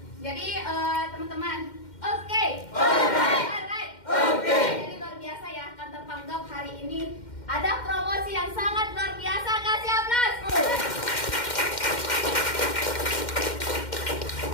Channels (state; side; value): late; right; 2.1 ms